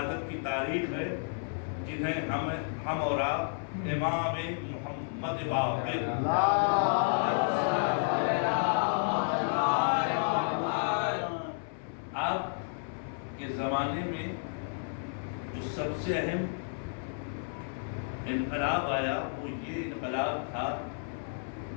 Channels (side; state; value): right; silent; 57 dB below the other